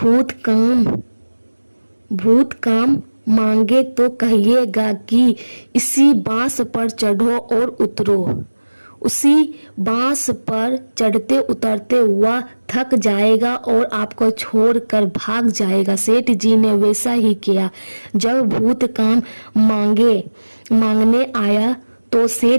काम मांगे तो कहिएगा कि इसी बांस पर चढ़ो और उतरो। उसी बांस पर चढ़ते उतरते हुआ थक जाएगा और आपको छोड़कर भाग जाएगा। सेठ जी ने वैसा ही किया। जब भूत काम मांगने आया तो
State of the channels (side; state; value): both; inverted; correlation -1.00